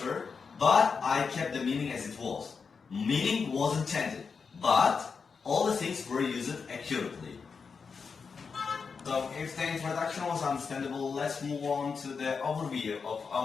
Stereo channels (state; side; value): quieter; right; 5.4 dB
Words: but I kept the meaning as it was. Meaning wasn't changed, but all the things were used accurately. So if the introduction was understandable, let's move on to the overview of